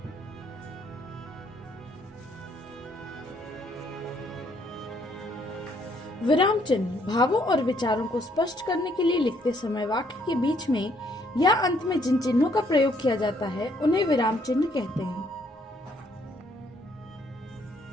विराम चिन्ह भावों और विचारों को स्पष्ट करने के लिए लिखते समय वाक्य के बीच में या अंत में जिन चिन्हों का प्रयोग किया जाता है उन्हें विराम चिन्ह कहते हैं।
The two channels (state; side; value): normal; both; correlation 0.68